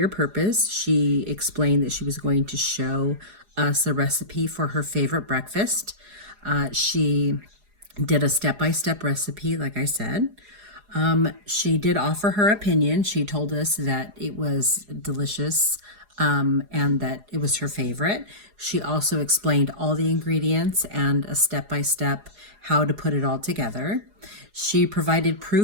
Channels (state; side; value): late; left; 4.8 ms